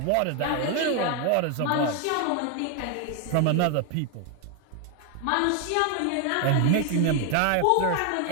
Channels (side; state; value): both; different; correlation 0.01